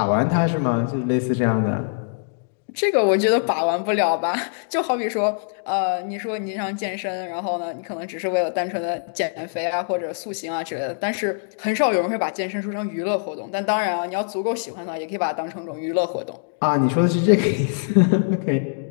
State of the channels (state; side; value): silent; right; digital silence